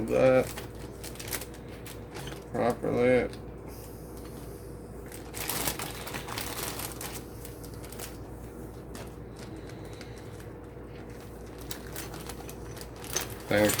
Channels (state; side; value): identical; both; correlation 1.00